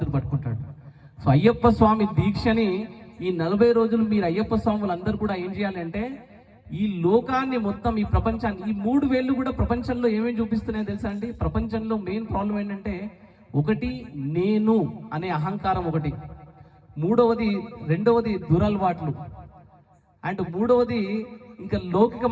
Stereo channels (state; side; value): identical; both; correlation 1.00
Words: పట్టుకుంటాడు. సో అయ్యప్ప స్వామి దీక్షని ఈ 40 రోజులు మీరు అయ్యప్ప స్వాములు అందరూ కూడా ఏం చేయాలి అంటే ఈ లోకాన్ని మొత్తం, ఈ ప్రపంచాన్ని, ఈ 3 వేళ్ళు కూడా ప్రపంచంలో ఏమేమి చూపిస్తున్నాయో తెలుసా అండి? ప్రపంచంలో మెయిన్ ప్రాబ్లం ఏంటంటే ఒకటి నేను అనే అహంకారం, ఒకటి రెండవది దురలవాట్లు, అండ్ మూడవది ఇంకా